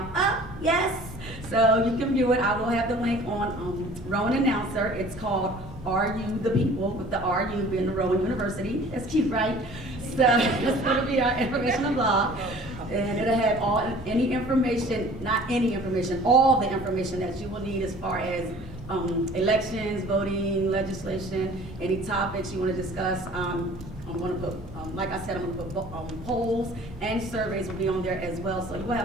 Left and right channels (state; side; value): normal; both; correlation 0.48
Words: up, yes. So you can view it. I will have the link on Rowan Announcer. It's called Are You the People, with the RU being the Rowan University. That's cute, right? So it's going to be our informational blog. And it'll have any information, not any information, all the information that you will need as far as elections, voting, legislation, any topics you want to discuss. I'm going to put, like I said, I'm going to put polls and surveys will be on there as well. So you will